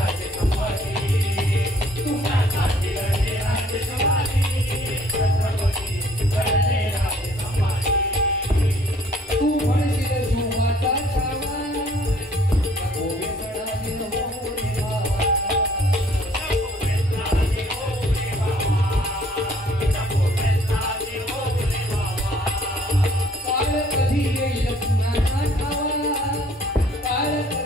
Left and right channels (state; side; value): normal; both; correlation 0.59